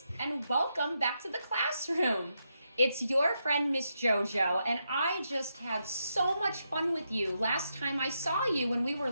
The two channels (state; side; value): inverted; both; correlation -0.83